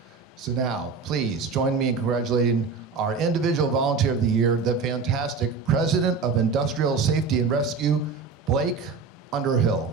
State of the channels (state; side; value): quieter; left; 4.9 dB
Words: So now, please join me in congratulating our individual volunteer of the year, the fantastic President of Industrial Safety and Rescue, Blake